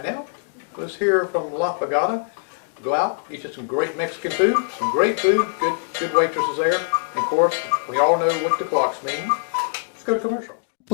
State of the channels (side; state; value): right; silent; digital silence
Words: now, let's hear from La Pagada. Go out, eat some great Mexican food, some great food, good waitresses there. And of course, we all know what the clocks mean. Let's go to commercial.